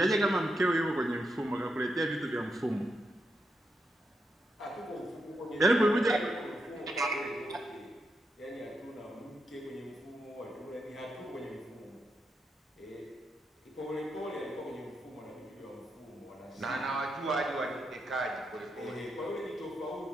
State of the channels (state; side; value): normal; both; correlation 0.84